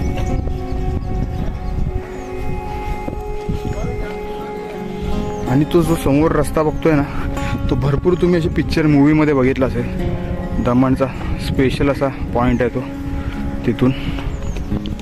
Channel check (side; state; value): both; identical; correlation 1.00